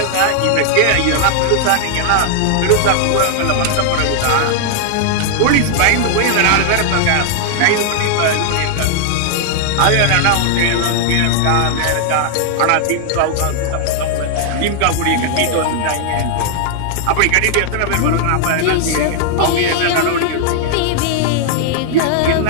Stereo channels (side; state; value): both; different; correlation 0.00